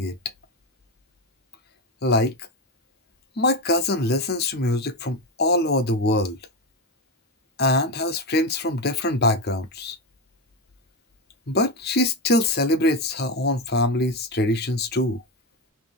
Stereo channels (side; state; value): both; normal; correlation 0.14